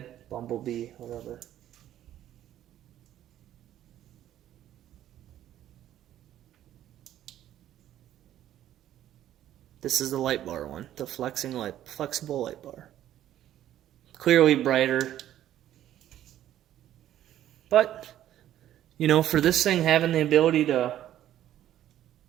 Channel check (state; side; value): quieter; left; 12.1 dB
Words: Bumblebee, whatever. This is the light bar one, the flexible light bar. Clearly brighter. But, you know, for this thing having the ability to,